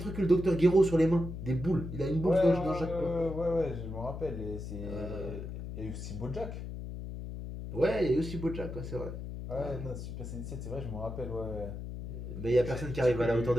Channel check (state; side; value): noise; left; hum, 8 dB below the sound